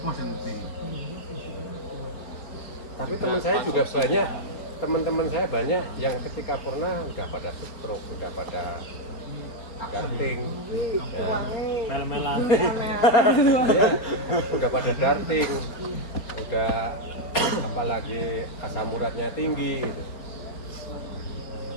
Tapi teman-teman saya banyak yang ketika purna udah pada stroke, udah pada darting, ya. Mel-melan. Ya, udah pada darting, udah apalagi asam uratnya tinggi gitu.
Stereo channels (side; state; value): right; late; 4.4 ms